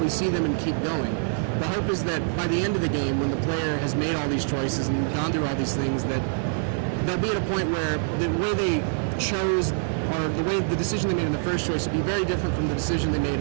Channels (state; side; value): silent; left; 57 dB below the other